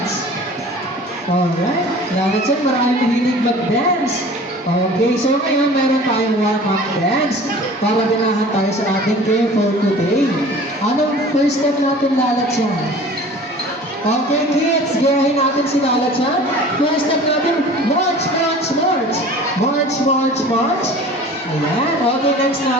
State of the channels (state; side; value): normal; both; correlation 0.43